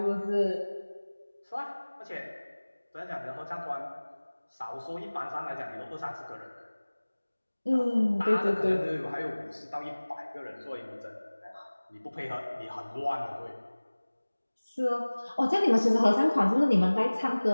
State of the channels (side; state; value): both; inverted; correlation -1.00